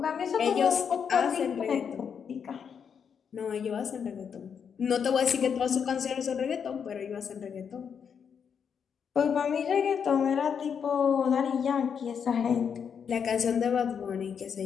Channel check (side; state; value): right; quieter; 7.1 dB